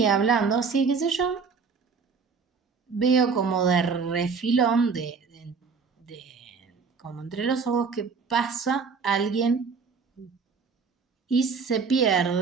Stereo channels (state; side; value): quieter; left; 5.3 dB